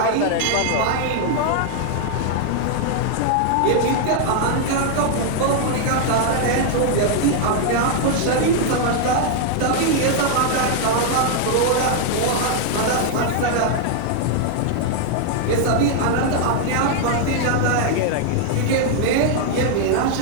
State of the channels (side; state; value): both; different; correlation 0.00